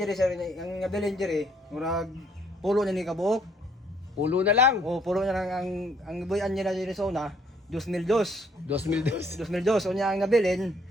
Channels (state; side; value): normal; both; correlation 0.65